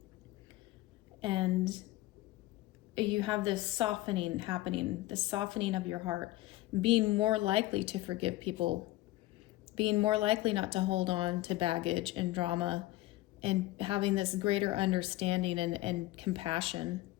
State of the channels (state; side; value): quieter; right; 17.3 dB